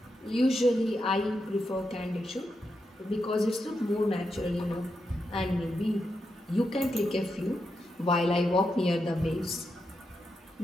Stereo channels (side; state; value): both; normal; correlation 0.85